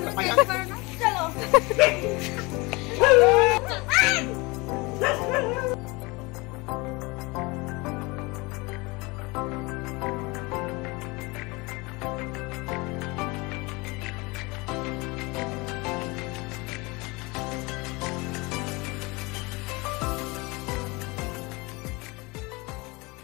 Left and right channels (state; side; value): quieter; right; 25.3 dB